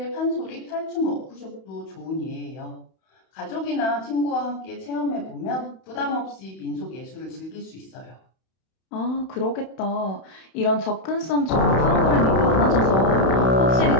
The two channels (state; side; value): late; right; 31 ms